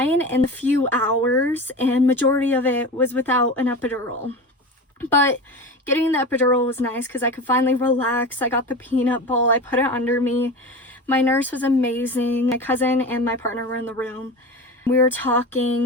in a few hours, and majority of it was without an epidural. But getting the epidural was nice because I could finally relax. I got the peanut ball, I put it under me. My nurse was amazing. My cousin and my partner were in the room. We were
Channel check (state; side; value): normal; both; correlation 0.29